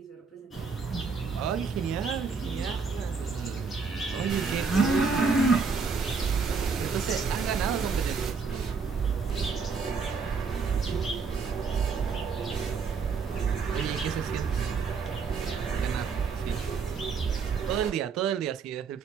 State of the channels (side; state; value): left; quieter; 5.2 dB